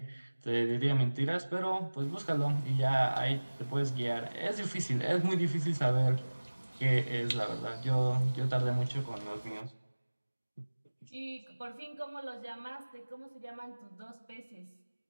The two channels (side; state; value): both; inverted; correlation -1.00